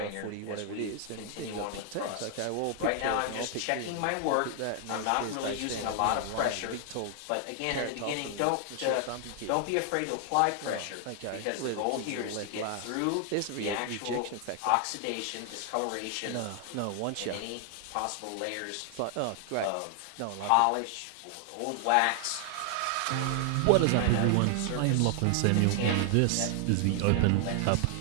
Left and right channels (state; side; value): different; both; correlation 0.00